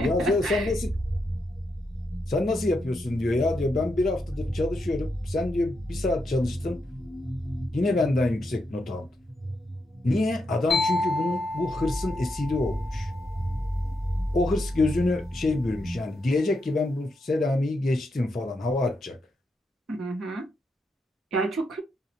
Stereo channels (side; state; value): both; normal; correlation 0.83